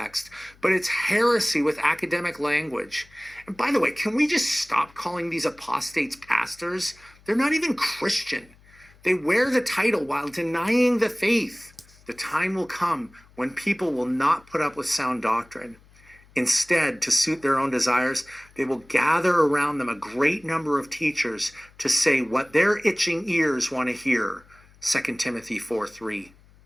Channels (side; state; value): left; noise; hum, 27 dB below the sound